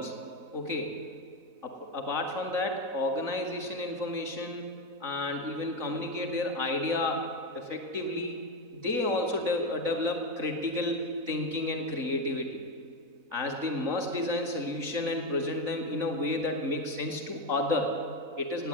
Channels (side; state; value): left; late; 4.0 ms